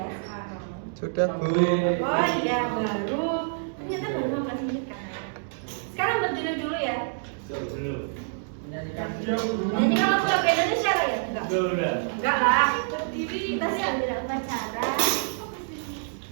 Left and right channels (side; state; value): left; silent; digital silence